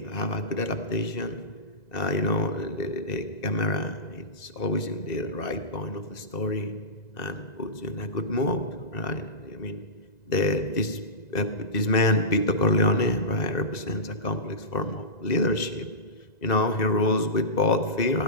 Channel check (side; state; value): right; late; 2.0 ms